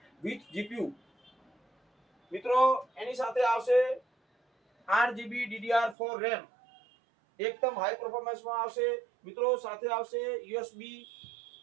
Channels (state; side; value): drops out; left; at 6.0 s